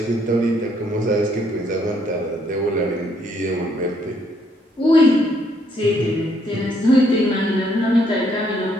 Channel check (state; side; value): normal; both; correlation 0.69